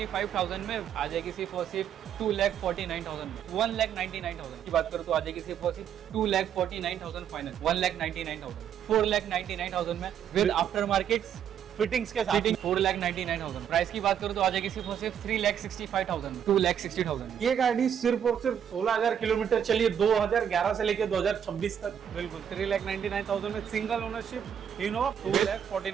में आ जाएगी सिर्फ और सिर्फ 2,49,000 में। 1,99,000 की बात करूँ तो आ जाएगी सिर्फ और सिर्फ 2,49,000 फाइनल, 1,99,000, 4,99,000 में विद आफ्टर मार्केट फिटिंग्स के साथ 4,99,000। प्राइस की बात करूँ तो आ जाएगी सिर्फ और सिर्फ 3,65,000, 2,60,000। ये गाड़ी सिर्फ और सिर्फ 16,000 किलोमीटर चली है 2011 से लेकर 2026 तक। बिल्कुल 3,99,000 में सिंगल ओनरशिप इनोवा,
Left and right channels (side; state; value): left; quieter; 8.9 dB